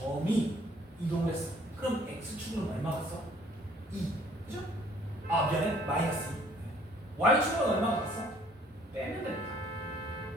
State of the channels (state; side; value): normal; both; correlation 0.59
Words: 아 미안해 마이너스 2. y축은 얼마가 갔어? 빼면 됩니다.